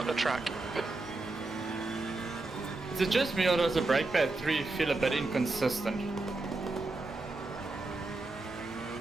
the track. Is it just me or does the brake pad 3 feel a bit inconsistent?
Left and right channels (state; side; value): quieter; left; 3.1 dB